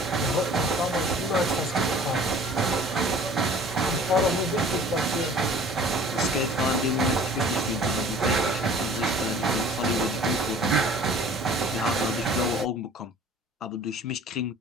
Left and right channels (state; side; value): normal; both; correlation 0.48